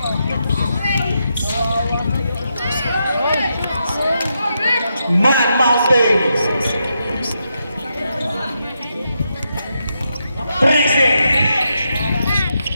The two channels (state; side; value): inverted; both; correlation -0.84